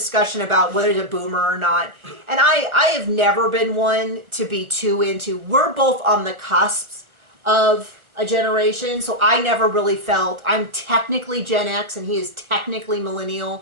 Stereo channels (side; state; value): left; late; 1.3 ms